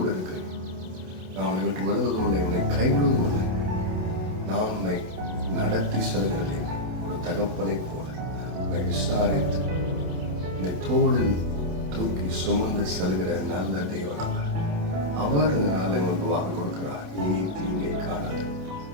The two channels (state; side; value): late; left; 27 ms